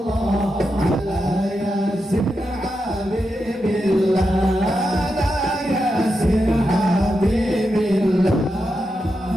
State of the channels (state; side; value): normal; both; correlation 0.87